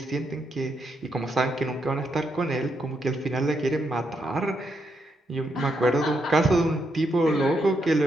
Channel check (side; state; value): both; normal; correlation 0.80